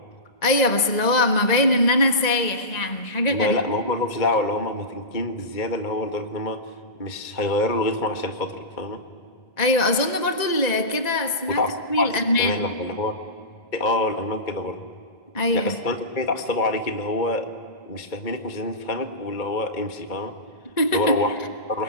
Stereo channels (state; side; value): late; right; 1.9 ms